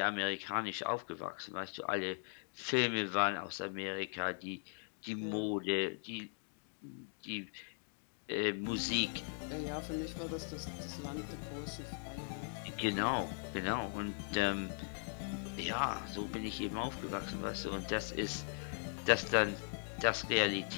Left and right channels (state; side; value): silent; right; 52 dB below the other